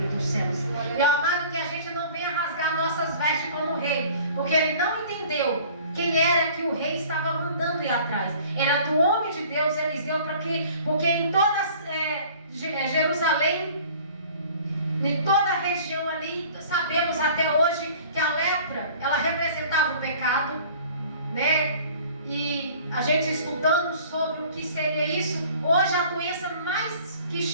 dos céus. Meu amado, que a gente não venha rasgar nossas vestes como rei, porque ele não entendeu quem era que o rei estava mandando ir atrás. Era do homem de Deus, Eliseu, porque em toda Jerusalém, em toda a região ali, sabemos até hoje que a lepra, ela representava o pecado, né? E a gente estudando sobre o que seria isso, hoje a doença que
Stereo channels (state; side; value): inverted; both; correlation -0.49